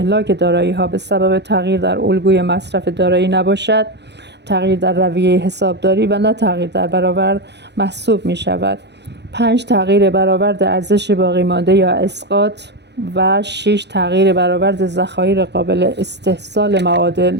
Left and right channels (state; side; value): late; left; 0.50 ms